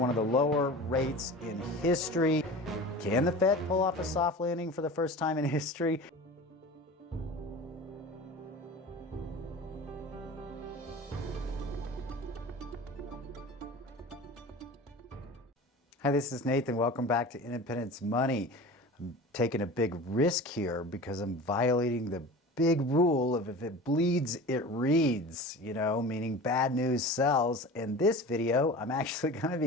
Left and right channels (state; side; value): normal; both; correlation 0.36